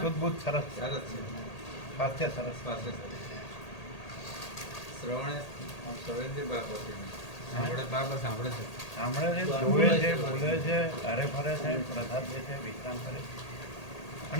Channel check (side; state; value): right; late; 1.8 ms